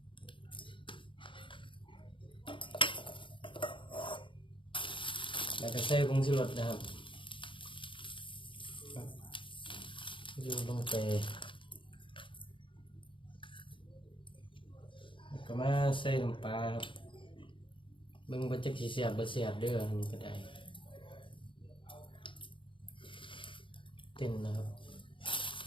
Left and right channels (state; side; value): late; right; 0.25 ms